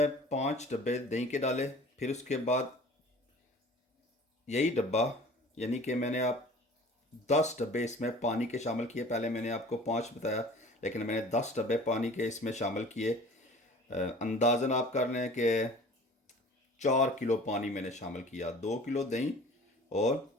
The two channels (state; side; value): normal; both; correlation 0.45